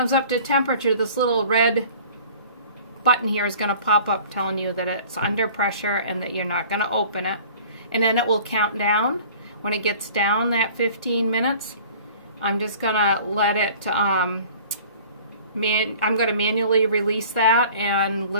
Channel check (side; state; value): both; inverted; correlation -0.47